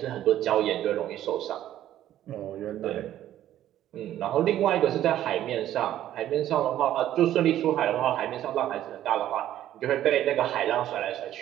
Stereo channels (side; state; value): left; quieter; 12.4 dB